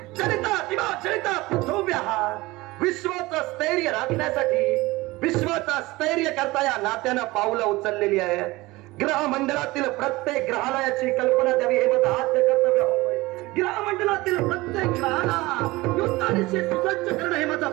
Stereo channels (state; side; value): quieter; left; 20.7 dB